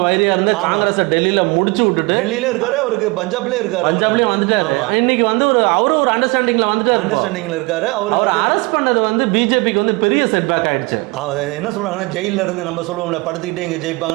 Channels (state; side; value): quieter; left; 25.8 dB